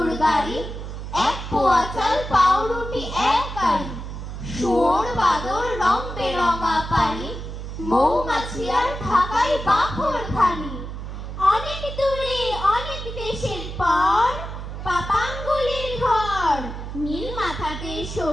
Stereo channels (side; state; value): right; noise; hum, 8 dB below the sound